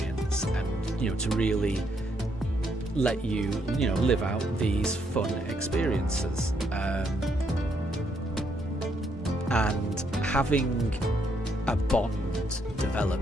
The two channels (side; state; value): both; normal; correlation 0.74